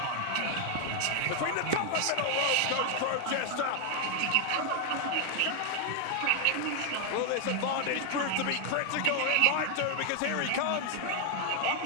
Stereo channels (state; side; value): different; both; correlation 0.00